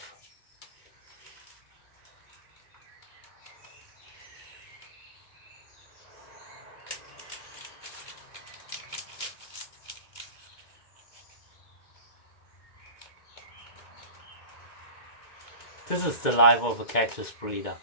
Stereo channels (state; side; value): late; right; 2.2 ms